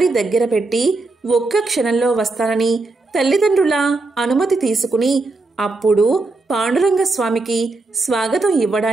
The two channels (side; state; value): left; quieter; 3.4 dB